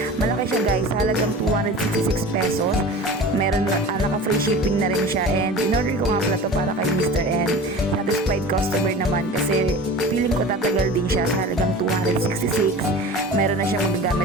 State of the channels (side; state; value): both; normal; correlation 0.37